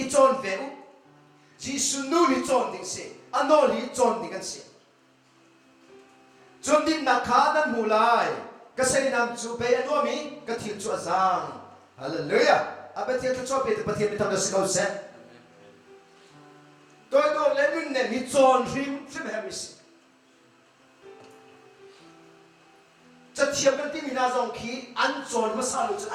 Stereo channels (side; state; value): both; identical; correlation 1.00